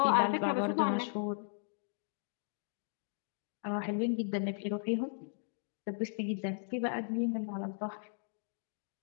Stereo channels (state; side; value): silent; right; digital silence